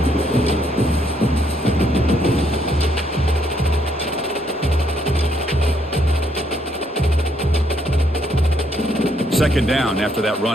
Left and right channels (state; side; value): normal; both; correlation 0.71